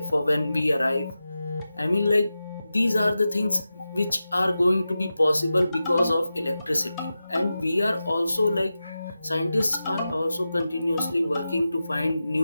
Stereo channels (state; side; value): inverted; both; correlation -0.93